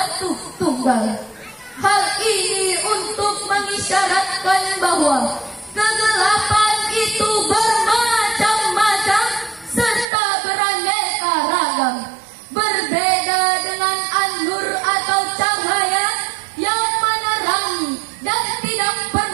tunggal. Hal ini untuk mengisyaratkan bahwa kegelapan itu bermacam-macam serta beraneka ragam, berbeda dengan an-nur atau cahaya yang menerangi dan tidak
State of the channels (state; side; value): drops out; left; at 10.1 s